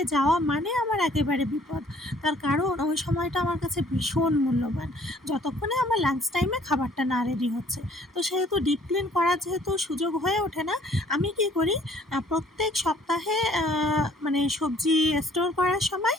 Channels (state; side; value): normal; both; correlation 0.58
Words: যাওয়া মানে আমার একেবারে বিপদ। তার কারণ ওই সময়টা আমার কাছে ভীষণ মূল্যবান, যতক্ষণে আমার লাঞ্চ টাইমে খাবারটা না রেডি হচ্ছে। তো সেহেতু ডিপ ক্লিন করার যেহেতু সুযোগ হয়ে ওঠে না, আমি কী করি, প্রত্যেক সপ্তাহে মানে সবজি স্টোর করার সময়